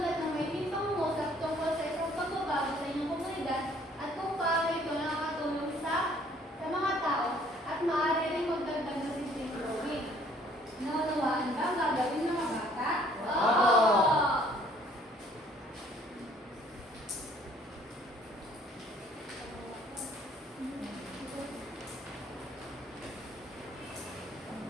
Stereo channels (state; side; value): normal; both; correlation 0.59